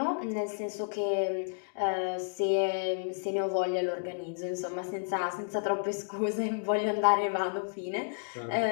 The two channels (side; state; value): right; silent; digital silence